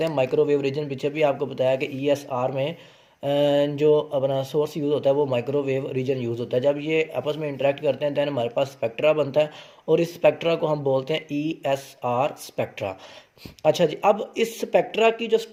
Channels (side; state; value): both; identical; correlation 1.00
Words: हैं माइक्रोवेव रीजन। पीछे भी आपको बताया कि ESR में जो अपना सोर्स यूज़ होता है वो माइक्रोवेव रीजन यूज़ होता है। जब ये आपस में इंटरेक्ट करते हैं दैन हमारे पास स्पेक्ट्रा बनता है, और इस स्पेक्ट्रा को हम बोलते हैं ESR स्पेक्ट्रा। अच्छा जी, अब इस स्पेक्ट्रा की जो